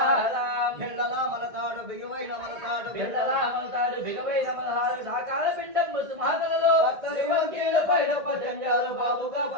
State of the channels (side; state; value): left; late; 1.7 ms